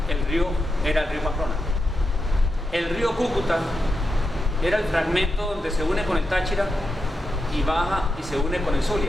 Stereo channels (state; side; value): normal; both; correlation 0.87